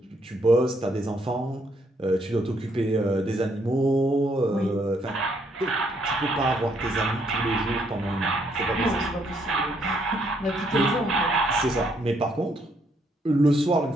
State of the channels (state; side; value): normal; both; correlation 0.71